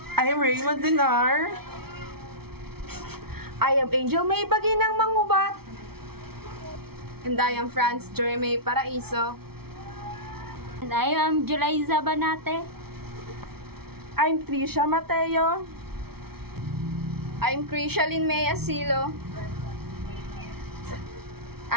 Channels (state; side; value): late; left; 0.95 ms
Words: I am Raymond Dinar. I am Angel May Baginang Mangubat. And I am Franz Jeremy Paraiso. And I am Julaiza Banate. I'm Trisha Mateo. I'm Krishalyn May Asilo.